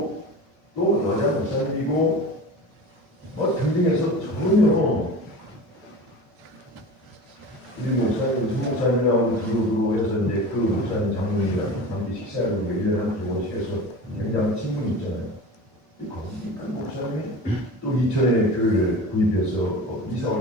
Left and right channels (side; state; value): both; normal; correlation 0.34